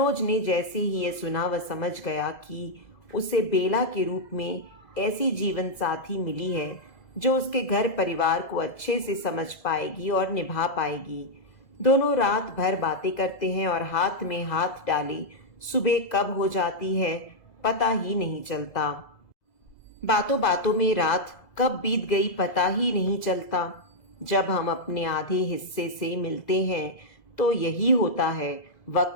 ने जैसे ही ये सुना वह समझ गया कि उसे बेला के रूप में ऐसी जीवन साथी मिली है जो उसके घर परिवार को अच्छे से समझ पाएगी और निभा पाएगी। दोनों रात भर बातें करते हैं और हाथ में हाथ डाले सुबह कब हो जाती है पता ही नहीं चलता। बातों बातों में रात कब बीत गई पता ही नहीं चलता। जब हम अपने आधे हिस्से से मिलते हैं तो यही होता है,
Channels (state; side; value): late; right; 2.0 ms